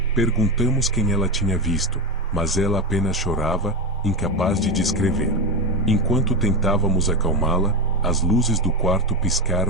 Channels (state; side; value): normal; both; correlation 0.17